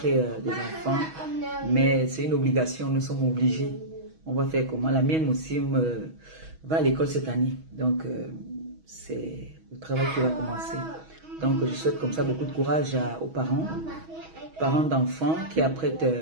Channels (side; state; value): left; late; 6.2 ms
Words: des enfants. Mais c'est une obligation, nous sommes obligés. On va faire comment? La mienne aussi va à l'école cette année. Donc, c'est le travail qui va commencer. Donc, je souhaite comme ça beaucoup de courage aux parents d'enfants qui apprêtent